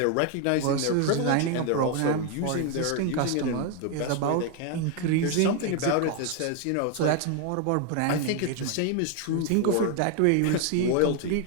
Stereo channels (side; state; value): both; different; correlation 0.01